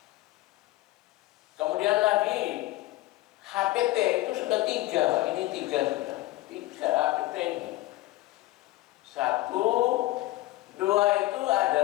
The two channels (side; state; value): right; quieter; 17.9 dB